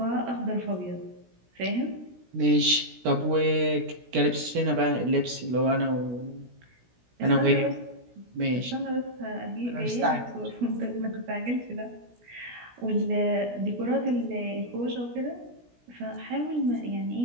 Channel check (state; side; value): late; left; 16 ms